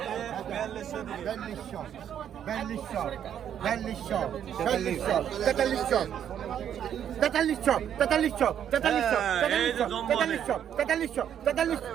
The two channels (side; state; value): left; quieter; 9.5 dB